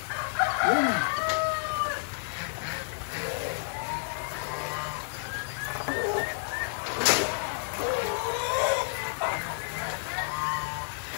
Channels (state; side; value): silent; right; 58 dB below the other